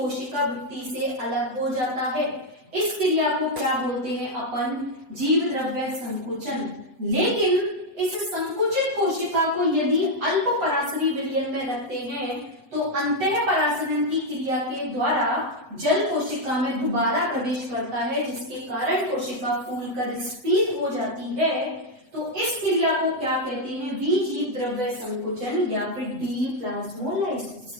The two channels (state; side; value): late; left; 7.9 ms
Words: भित्ति से अलग हो जाता है। इस क्रिया को क्या बोलते हैं अपन, जीव द्रव्य संकुचन। लेकिन इस संकुचित कोशिका को यदि अल्प परासरी विलयन में रखते हैं तो अंतः परासरण की क्रिया के द्वारा जल कोशिका में दोबारा प्रवेश करता है, जिसके कारण कोशिका फूलकर स्फीत हो जाती है। तो इस क्रिया को क्या कहते हैं, जीव द्रव्य संकुचन या फिर डीप्लाज्मोलाइसिस।